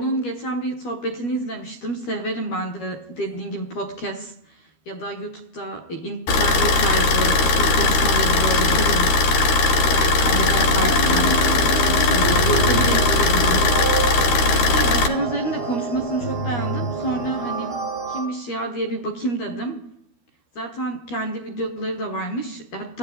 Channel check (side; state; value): right; late; 12 ms